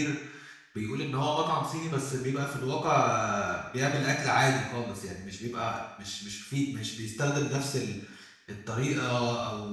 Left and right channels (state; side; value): identical; both; correlation 1.00